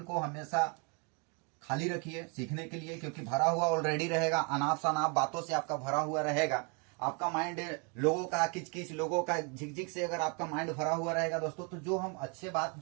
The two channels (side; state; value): left; quieter; 34.8 dB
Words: को हमेशा खाली रखिए सीखने के लिए, क्योंकि भरा हुआ ऑलरेडी रहेगा, अनाप शनाप बातों से आपका भरा हुआ रहेगा। आपका माइंड लोगों का किच-किच, लोगों का झिक-झिक से अगर आपका माइंड भरा हुआ रहेगा दोस्तों, तो जो हम अच्छे बात